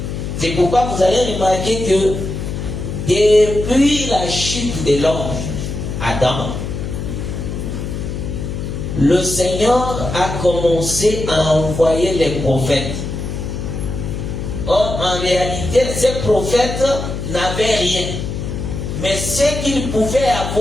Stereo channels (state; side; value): noise; left; hum, 5 dB below the sound